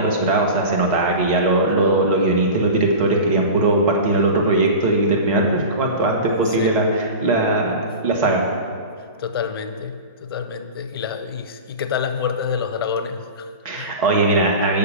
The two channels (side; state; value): both; inverted; correlation -0.31